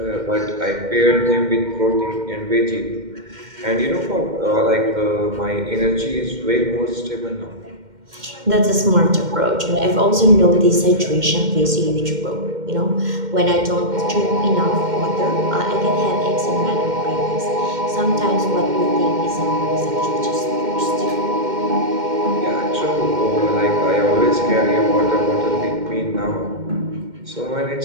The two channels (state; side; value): late; left; 2.1 ms